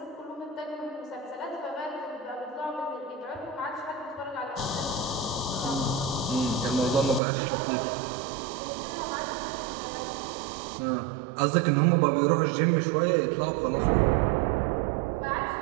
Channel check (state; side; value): drops out; left; at 7.2 s